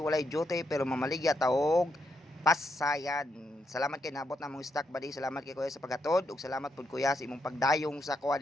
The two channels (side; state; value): both; normal; correlation 0.80